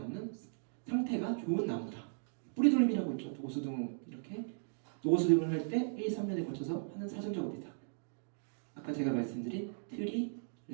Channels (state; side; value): silent; left; digital silence